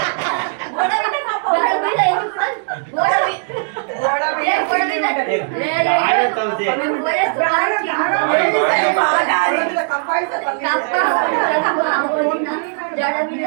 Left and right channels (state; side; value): silent; left; digital silence